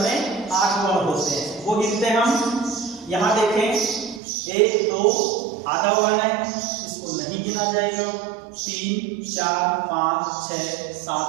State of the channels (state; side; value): drops out; left; at 4.2 s